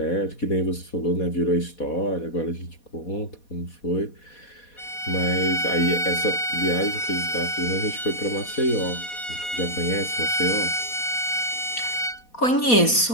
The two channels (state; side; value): late; right; 4.2 ms